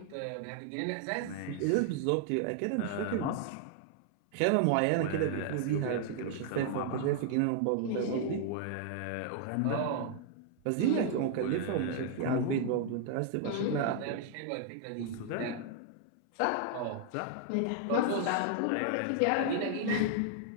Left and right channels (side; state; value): both; different; correlation 0.00